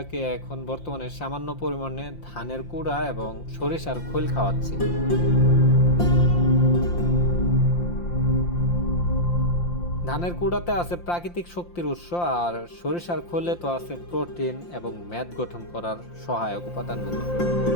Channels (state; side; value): late; right; 5.8 ms